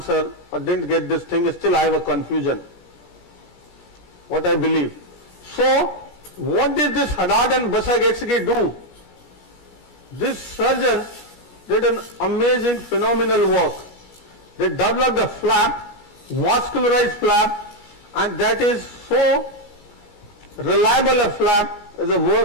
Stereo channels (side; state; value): right; late; 17 ms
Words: or didn't get this thing, still I have a confusion. What I believe. So, what did this Haddad and Basagestegui do? These surgeons did an amazing, phenomenal work. They developed a flap, vascularized flap, and that is so reliable a flap as a